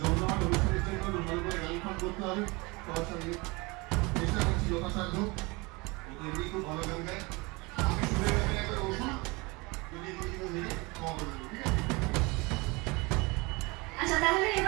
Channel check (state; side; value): quieter; left; 25.7 dB